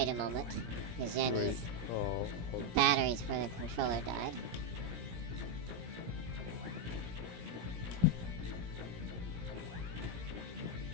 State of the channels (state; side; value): late; left; 17 ms